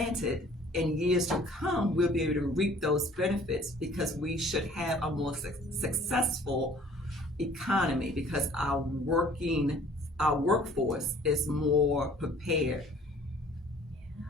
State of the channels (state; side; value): normal; both; correlation 0.53